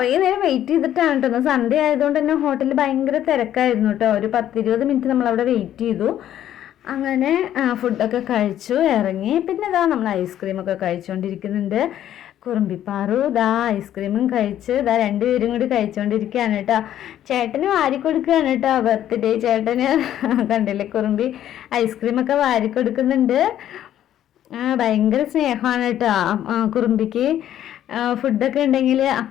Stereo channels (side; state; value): right; quieter; 11.5 dB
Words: നേരം വെയിറ്റ് ചെയ്തിട്ടാണ് കേട്ടോ. സൺഡേ ആയതുകൊണ്ട് തന്നെ ഹോട്ടലിൽ ഭയങ്കര തിരക്കായിരുന്നു കേട്ടോ. ഒരു 10-20 മിനിറ്റ് നമ്മളവിടെ വെയിറ്റ് ചെയ്തു. അങ്ങനെ ഫുഡൊക്കെ കഴിച്ചു ഇറങ്ങി. പിന്നെ ഇതാ നമ്മൾ ഐസ്ക്രീമൊക്കെ കഴിച്ചുകൊണ്ടിരിക്കുന്നുണ്ട്. കുറുമ്പിപ്പാറു ഇതാ ഐസ്ക്രീമും കഴിച്ച് രണ്ടുപേരും കൂടി കഴിച്ചുകൊണ്ടിരിക്കുകയാണ് കേട്ടോ. ചേട്ടന് വാരി കൊടുക്കുകയാണ് കേട്ടോ, ബർത്ത്ഡേ ചേട്ടന്. കണ്ടില്ലേ, കുറുമ്പി ഐസ്ക്രീമൊക്കെ വാരി കൊടുക്കുന്നുണ്ട്. ഭയങ്കര സ്നേഹമാണ് കേട്ടോ കുറുമ്പിക്ക്. ഫുഡൊക്കെ ഉണ്ടെങ്കിൽ